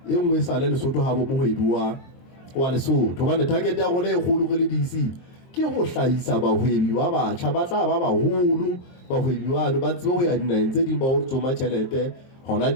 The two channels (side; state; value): right; late; 23 ms